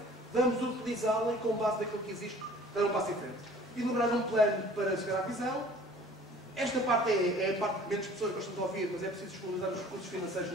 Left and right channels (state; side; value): normal; both; correlation 0.50